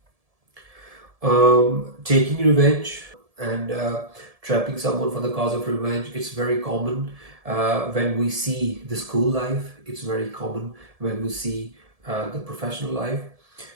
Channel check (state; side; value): late; left; 1.7 ms